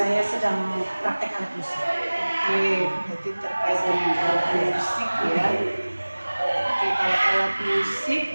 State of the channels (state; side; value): inverted; both; correlation -1.00